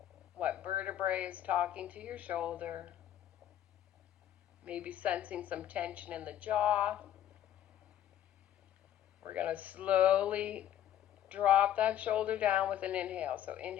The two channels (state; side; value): quieter; right; 11.2 dB